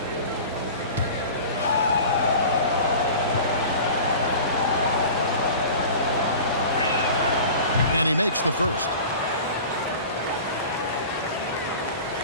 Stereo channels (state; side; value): inverted; both; correlation -0.38